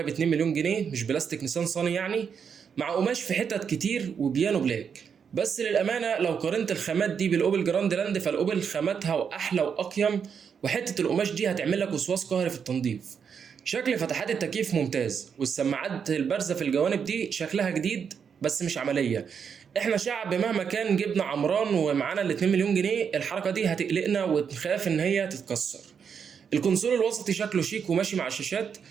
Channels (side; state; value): left; quieter; 6.9 dB